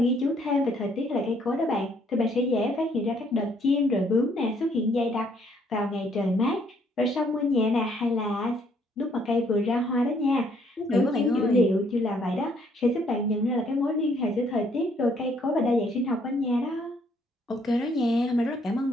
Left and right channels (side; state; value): both; normal; correlation 0.67